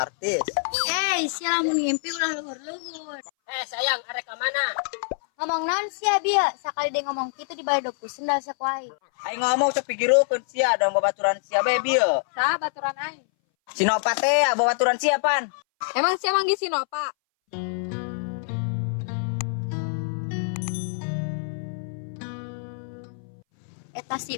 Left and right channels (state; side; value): silent; right; 60 dB below the other